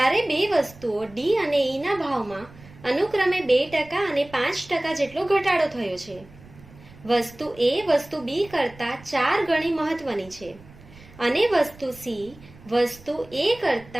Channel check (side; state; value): right; noise; rumble, 22 dB below the sound